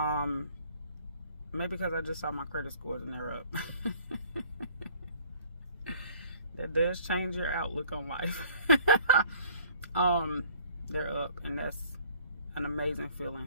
Maybe because I just saw my credit scores and they're up. That does change your outlook on life. They're up, and that's an amazing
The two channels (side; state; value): both; inverted; correlation -0.55